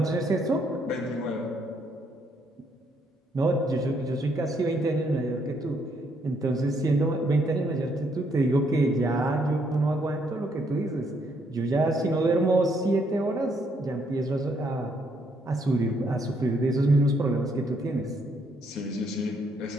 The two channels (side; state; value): both; normal; correlation 0.72